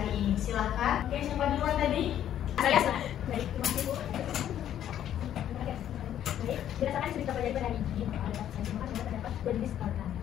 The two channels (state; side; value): quieter; right; 10.8 dB